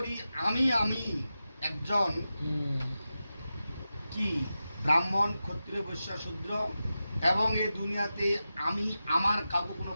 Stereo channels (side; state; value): both; inverted; correlation -0.92